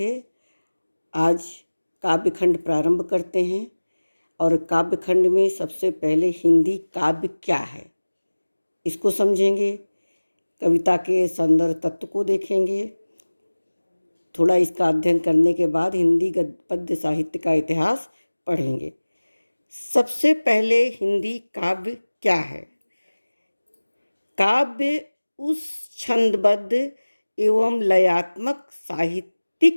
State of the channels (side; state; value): both; inverted; correlation -1.00